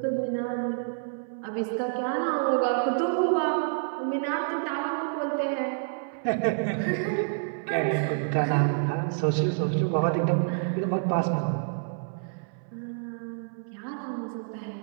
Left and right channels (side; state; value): left; silent; 59 dB below the other